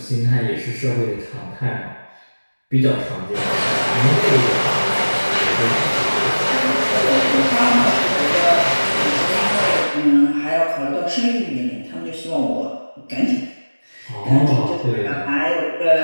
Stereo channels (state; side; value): inverted; both; correlation -1.00